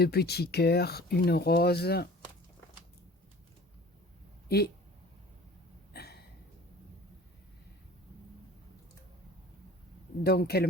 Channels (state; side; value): normal; both; correlation 0.44